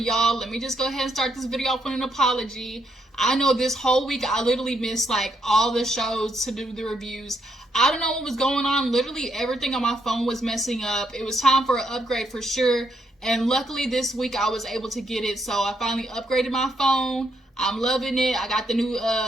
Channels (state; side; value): normal; both; correlation 0.76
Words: Let me just go ahead and start this video off with an apology. I know this whole week I literally missed like all the shows to do the reviews. I don't know what was going on. Literally everything on my phone was messing up. It was time for an upgrade for sure. And luckily this week I was able to get it. So I finally upgraded my phone. I'm loving it. I got the new,